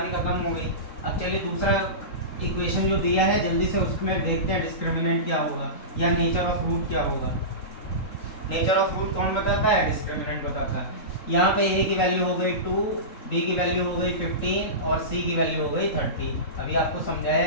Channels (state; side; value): late; right; 3.7 ms